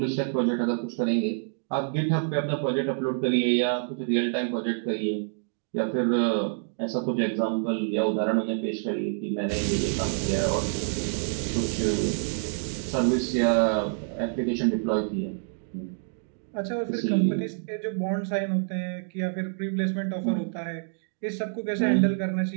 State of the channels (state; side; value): silent; left; digital silence